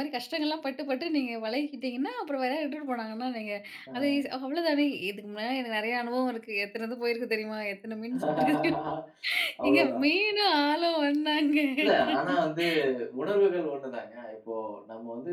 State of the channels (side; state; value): both; identical; correlation 1.00